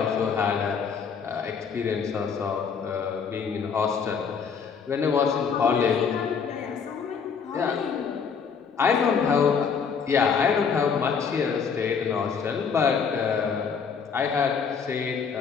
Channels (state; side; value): quieter; right; 6.2 dB